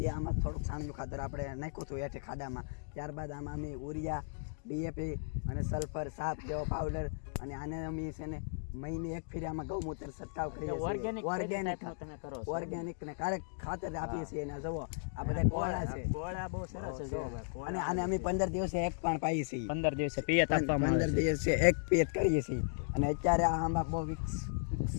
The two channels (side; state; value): right; silent; digital silence